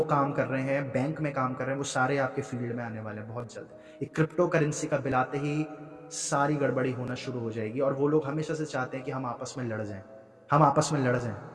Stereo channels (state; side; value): identical; both; correlation 1.00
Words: काम कर रहे हैं, बैंक में काम कर रहे हैं, वो सारे आपके फील्ड में आने वाले हैं बहुत जल्द। एक क्रिप्टो करेंसी का बिल आते ही सारी गड़बड़ी होना शुरू हो जाएगी। और वो लोग हमेशा से चाहते हैं कि हम आपस में लड़ जाएं,